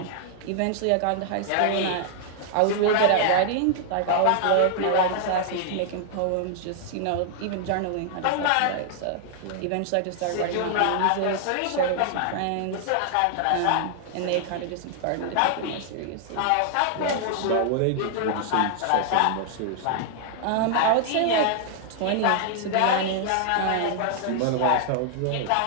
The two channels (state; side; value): different; both; correlation -0.01